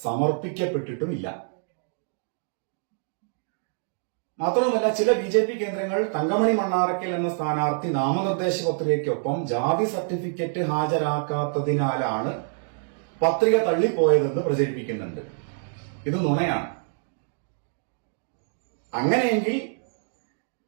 സമർപ്പിക്കപ്പെട്ടിട്ടുമില്ല. മാത്രമല്ല, ചില ബിജെപി കേന്ദ്രങ്ങൾ തങ്കമണി മണ്ണാറക്കൽ എന്ന സ്ഥാനാർത്ഥി നാമനിർദ്ദേശ പത്രികയ്ക്കൊപ്പം ജാതി സർട്ടിഫിക്കറ്റ് ഹാജരാക്കാത്തതിനാലാണ് പത്രിക തള്ളിപ്പോയതെന്ന് പ്രചരിപ്പിക്കുന്നുണ്ട്. ഇത് നുണയാണ്. അങ്ങനെയെങ്കിൽ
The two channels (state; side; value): silent; left; 61 dB below the other